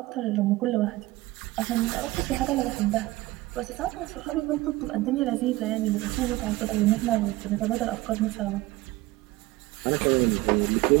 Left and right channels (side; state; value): left; quieter; 19.0 dB